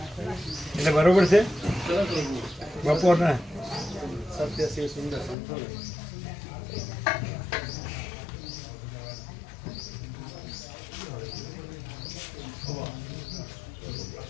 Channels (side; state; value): right; drops out; at 5.4 s